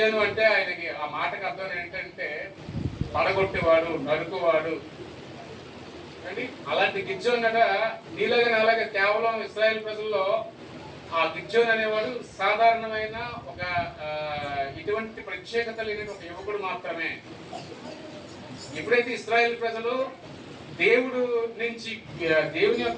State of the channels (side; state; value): both; identical; correlation 1.00